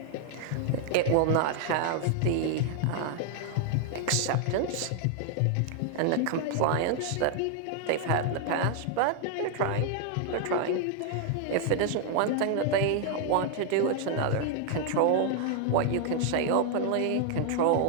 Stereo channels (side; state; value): both; different; correlation 0.00